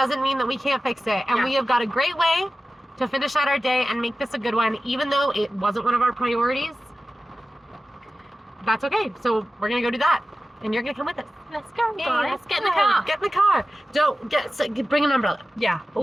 mean that we can't fix it. And Yeah. we have got a great way to finish out our day and make this a good one, even though it wasn't one of our priorities. That's okay. So we're gonna go do that. And you're gonna come with us. Let's go. Yeah, Let's get in the car. Get in the car. Bring an umbrella. Yeah.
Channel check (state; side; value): normal; both; correlation 0.95